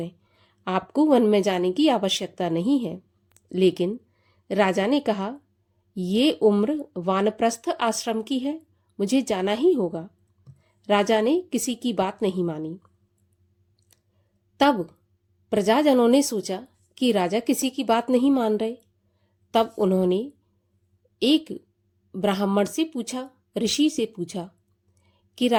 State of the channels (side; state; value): both; identical; correlation 1.00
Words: आपको वन में जाने की आवश्यकता नहीं है। लेकिन राजा ने कहा, ये उम्र वानप्रस्थ आश्रम की है, मुझे जाना ही होगा। राजा ने किसी की बात नहीं मानी। तब प्रजाजनों ने सोचा कि राजा किसी की बात नहीं मान रहे। तब उन्होंने एक ब्राह्मण से पूछा, ऋषि से पूछा कि